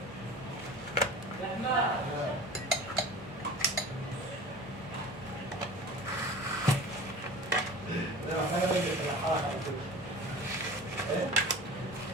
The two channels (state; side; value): normal; both; correlation 0.38